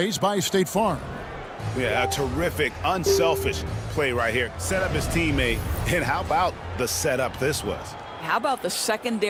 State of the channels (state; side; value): identical; both; correlation 1.00